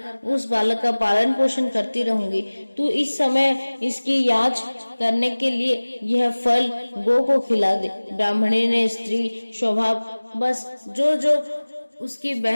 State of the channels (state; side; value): inverted; both; correlation -1.00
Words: उस बालक का पालन पोषण करती रहूंगी। तू इस समय इसकी याच करने के लिए यह फल गो को खिला दे। ब्राह्मणी ने स्त्री स्वभाव बस जो उसकी